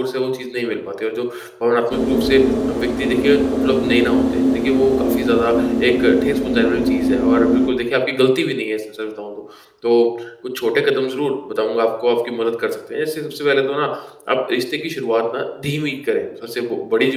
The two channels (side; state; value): both; identical; correlation 1.00